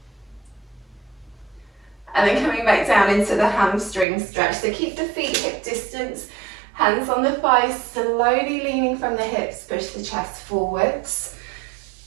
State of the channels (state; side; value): drops out; left; at 4.0 s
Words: And then coming back down into the hamstring stretch. So keep the feet hip distance, hands on the thighs, slowly leaning from the hips, push the chest forwards.